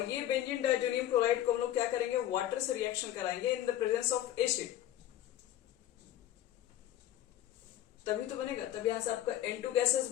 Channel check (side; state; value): right; quieter; 12.7 dB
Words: ये बेंजीन डाइजोनियम क्लोराइड को हम लोग क्या करेंगे? वाटर से रिएक्शन कराएंगे in the presence of acid, तभी तो बनेगा। तब यहां से आपका N2 गैसेस